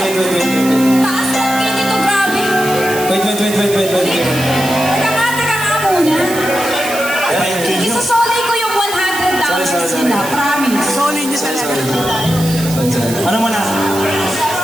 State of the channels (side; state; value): right; noise; hiss, 9 dB below the sound